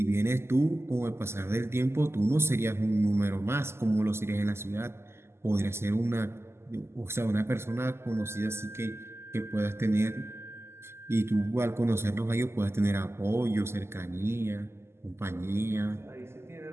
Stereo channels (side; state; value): left; late; 0.12 ms